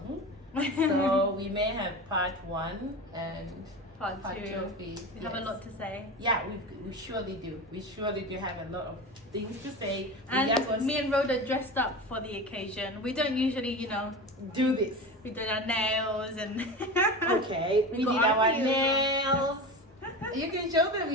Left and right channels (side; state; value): both; normal; correlation 0.28